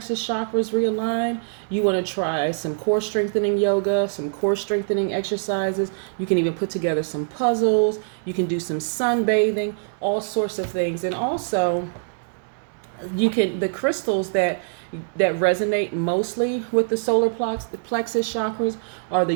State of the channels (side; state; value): left; silent; digital silence